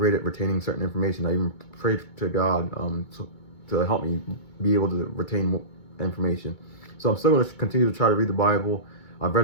at retaining certain information. I even prayed to God to help me be able to retain information. So I'm still going to continue to try to read the Bible. I've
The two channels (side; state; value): right; late; 2.2 ms